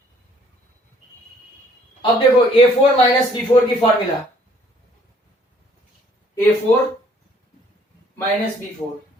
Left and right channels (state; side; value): normal; both; correlation 0.61